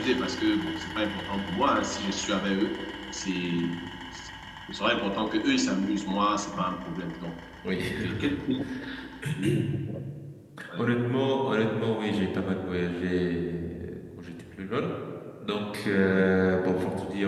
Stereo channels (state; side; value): identical; both; correlation 1.00